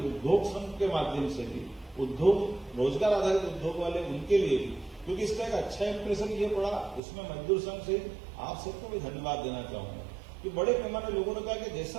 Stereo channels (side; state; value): left; drops out; at 7.0 s